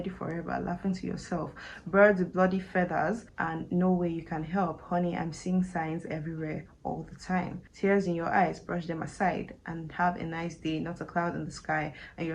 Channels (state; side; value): identical; both; correlation 1.00